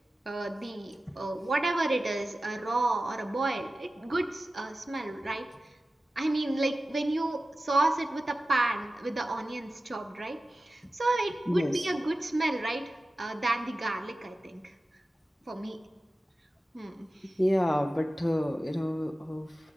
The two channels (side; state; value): both; normal; correlation 0.95